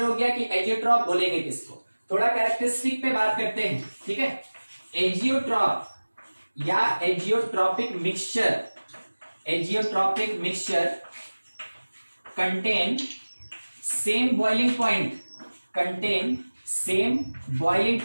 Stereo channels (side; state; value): both; inverted; correlation -1.00